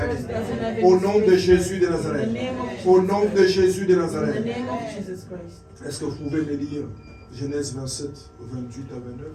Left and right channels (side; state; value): both; identical; correlation 1.00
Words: Au nom de Jésus de Nazareth. Au nom de Jésus de In the Nazareth. name of Jesus Christ. Est-ce que vous pouvez me lire Genèse 27, 28 à 29?